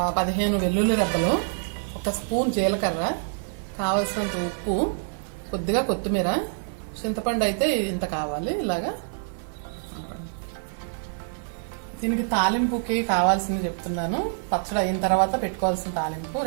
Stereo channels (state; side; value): silent; left; digital silence